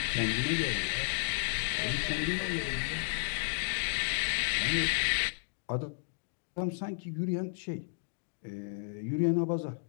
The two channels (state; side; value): silent; right; digital silence